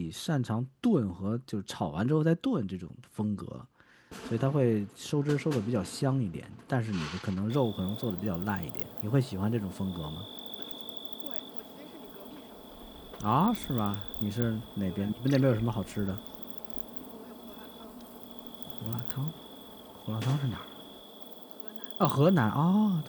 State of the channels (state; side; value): identical; both; correlation 1.00